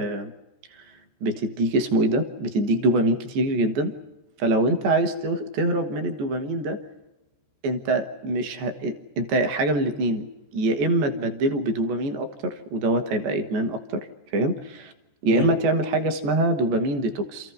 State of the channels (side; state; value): left; late; 14 ms